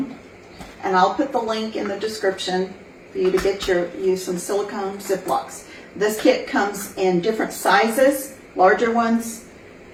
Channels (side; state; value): both; identical; correlation 1.00